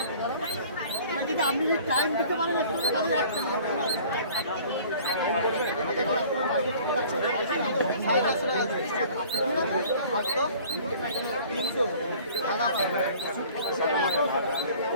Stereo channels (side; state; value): both; inverted; correlation -0.49